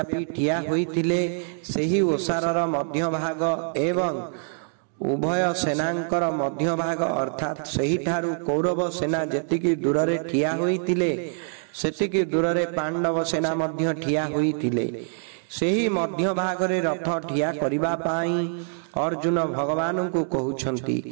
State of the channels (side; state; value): left; silent; 58 dB below the other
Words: ठिया होइतिले सेही ओसारर मध्य भाग एवं उभय सेनांकर मध्य भाग अर्थात सही ठारू कौरव सेना जेतिकी दूररे ठिया होइतिले सेतिकी दूररे पांडव सेना मध्य ठिया होइतिले। सेही मध्य भागरे रथ ठिया करिबा पाई अर्जुन भगवान को